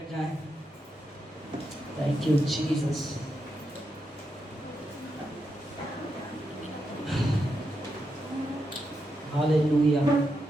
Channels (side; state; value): both; normal; correlation 0.84